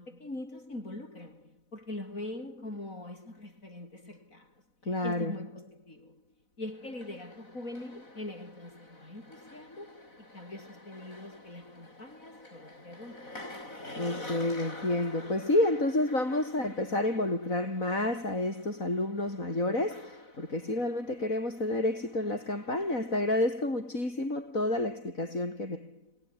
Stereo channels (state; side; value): late; right; 4.0 ms